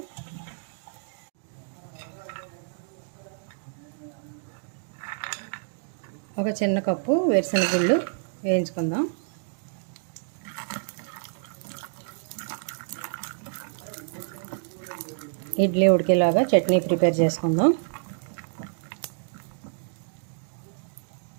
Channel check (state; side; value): silent; left; digital silence